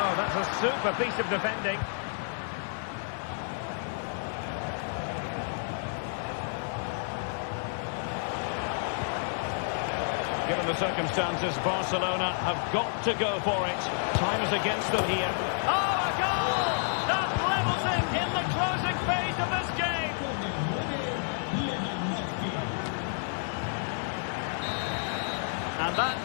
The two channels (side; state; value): right; silent; 58 dB below the other